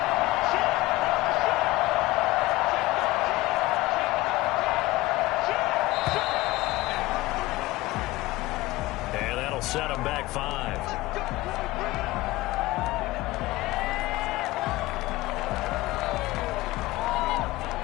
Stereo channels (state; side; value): quieter; right; 19.1 dB